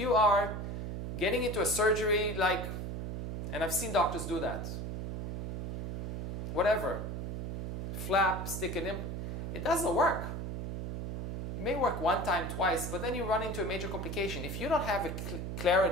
are getting into a surgery and I've seen doctors do that, whatever, flap, stick an implant, it doesn't work. It may work 1 time, twice, but then you run into a major complication. If you don't have a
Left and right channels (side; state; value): right; noise; hum, 4 dB below the sound